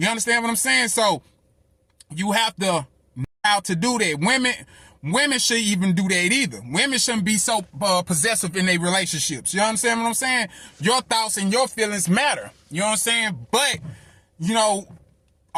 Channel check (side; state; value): both; identical; correlation 1.00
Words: understand what I'm saying? So you have to know how to do that. Women shouldn't even do that either. Women shouldn't be so possessive in their relationships. You understand what I'm saying? Your thoughts and your feelings matter. You know what I'm saying? But,